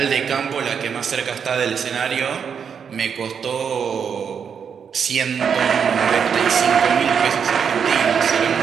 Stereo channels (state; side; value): quieter; left; 7.0 dB